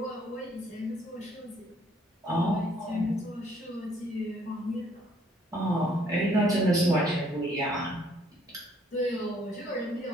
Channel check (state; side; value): normal; both; correlation 0.64